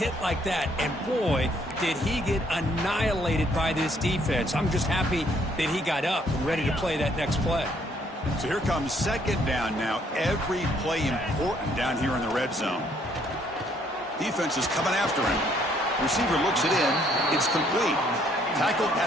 like that. And boy, did he get annihilated by this defense. I'm just happy that he got up and ready to play that next play. So here comes 2nd down now. Every play important down here in the red zone. Defense is coming after him. Receiver looks it in. It's complete. Tackled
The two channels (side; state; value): both; normal; correlation 0.67